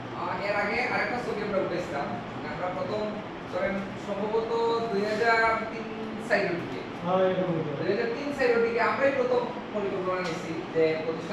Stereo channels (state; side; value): identical; both; correlation 1.00